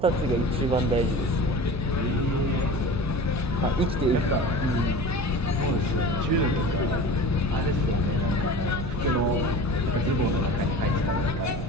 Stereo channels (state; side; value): noise; right; rumble, 9 dB below the sound